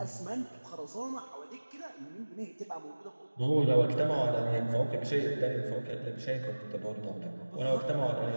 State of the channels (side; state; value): both; inverted; correlation -1.00